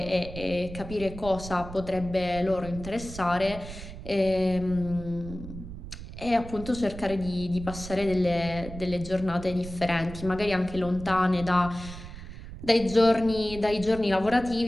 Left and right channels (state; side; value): noise; right; rumble, 12 dB below the sound